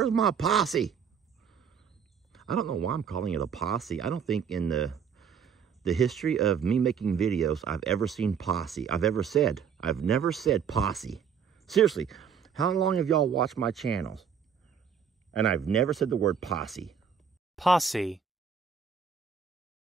my posse? I don't know why I'm calling it a posse. I don't think in the history of me making videos, I've ever seen posse. I've never said posse. Seriously, how long have y'all watched my channels? And I've never said the word posse. Posse.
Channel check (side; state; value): left; quieter; 7.1 dB